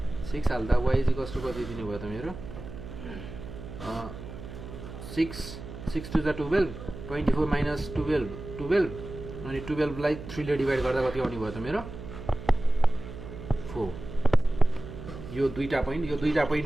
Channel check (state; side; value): noise; right; hum, 12 dB below the sound